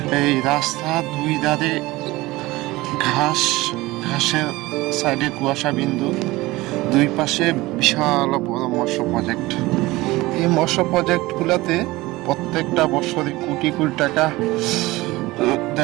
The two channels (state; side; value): quieter; left; 19.8 dB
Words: এই রাস্তা দুই ধারে ঘাসের সাইডে কুয়াশা বিন্দু, দুই পাশে বিশাল বড় মৎস্য প্রজেক্ট। এই মৎস্য প্রজেক্টগুলোতে প্রত্যেকটা বছরে কোটি কোটি টাকা